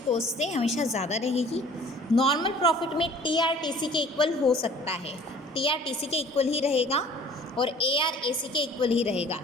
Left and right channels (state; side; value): normal; both; correlation 0.50